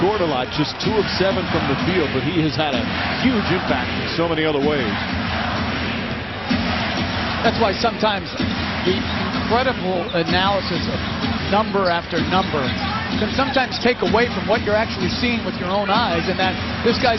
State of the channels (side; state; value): left; noise; hum, 24 dB below the sound